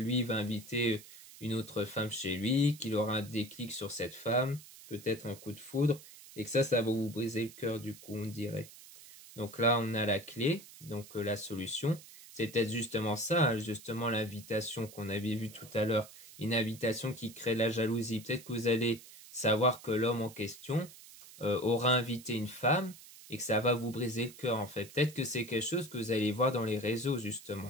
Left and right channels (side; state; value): right; noise; hiss, 18 dB below the sound